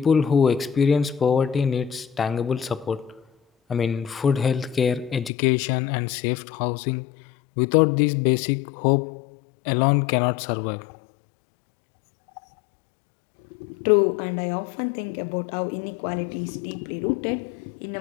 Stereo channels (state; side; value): drops out; right; at 5.3 s